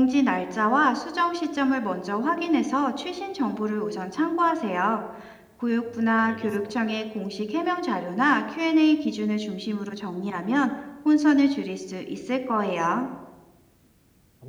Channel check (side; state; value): both; identical; correlation 1.00